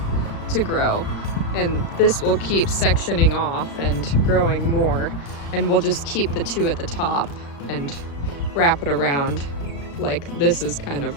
to grow, and this will keep sectioning off and growing more, and we'll just keep the two at the top and wrap it around like this is kind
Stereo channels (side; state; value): right; late; 35 ms